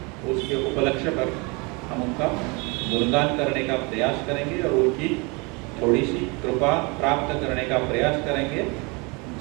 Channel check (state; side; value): quieter; left; 29.1 dB